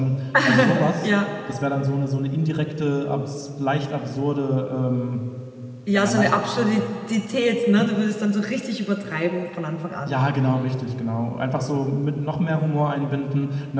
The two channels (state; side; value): identical; both; correlation 1.00